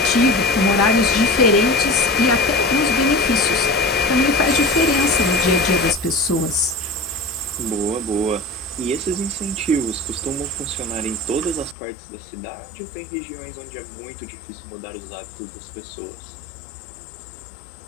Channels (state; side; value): drops out; right; at 11.8 s